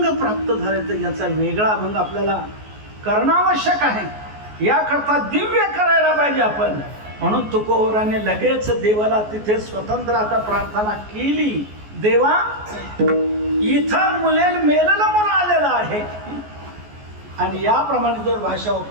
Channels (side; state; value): left; late; 14 ms